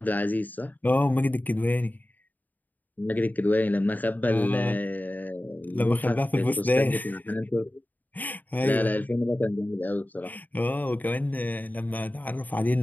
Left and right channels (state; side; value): late; right; 0.084 ms